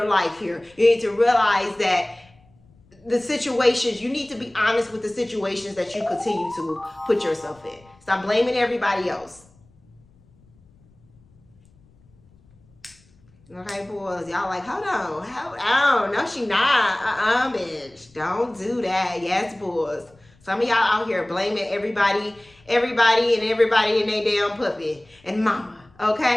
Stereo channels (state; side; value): noise; left; rumble, 30 dB below the sound